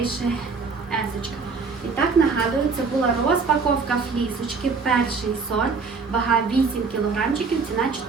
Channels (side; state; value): left; quieter; 4.8 dB